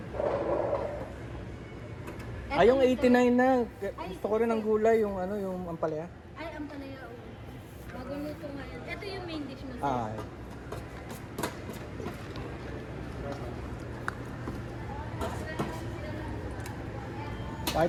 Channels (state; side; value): identical; both; correlation 1.00